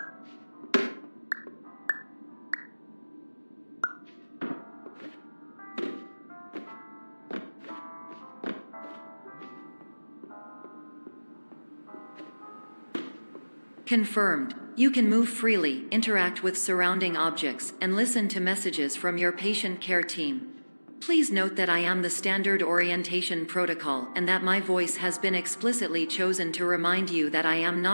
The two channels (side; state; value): both; inverted; correlation -1.00